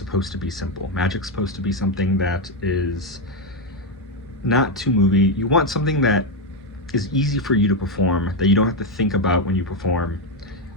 to be simple. Magic's supposed to be something that is not too movie. You want something that is easy for you to perform, that you don't have to think about when you perform.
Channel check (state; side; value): normal; both; correlation 0.06